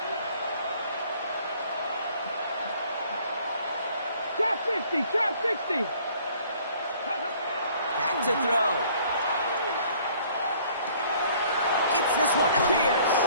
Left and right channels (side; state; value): both; inverted; correlation -0.57